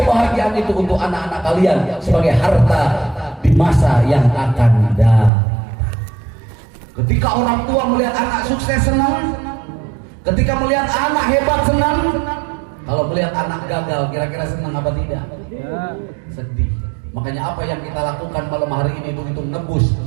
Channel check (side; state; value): left; drops out; at 5.3 s